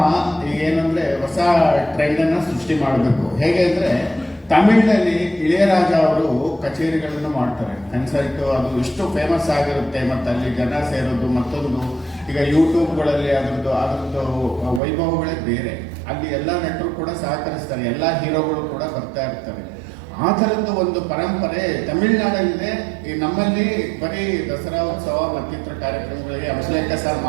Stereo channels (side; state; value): left; drops out; at 14.8 s